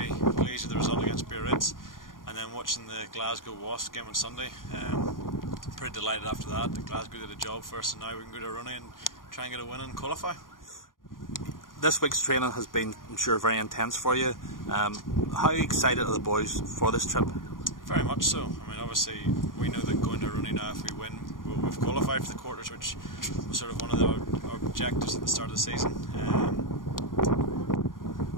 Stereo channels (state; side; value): late; right; 0.90 ms